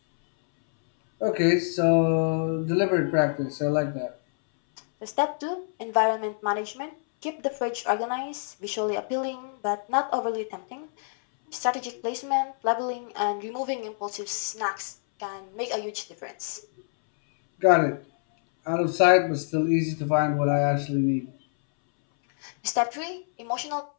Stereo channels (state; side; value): silent; right; 61 dB below the other